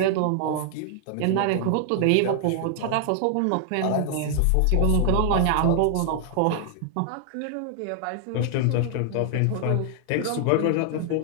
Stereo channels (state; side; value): different; both; correlation 0.00